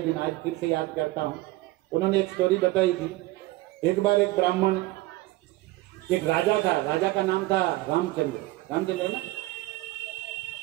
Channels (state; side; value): quieter; left; 19.0 dB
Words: आज फिर से याद करता हूं। उन्होंने एक स्टोरी बताई थी। एक बार एक ब्राह्मण, एक राजा था, राजा का नाम था रामचंद्र ना,